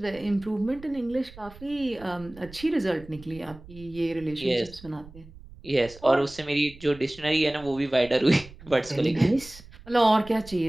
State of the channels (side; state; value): right; noise; rumble, 19 dB below the sound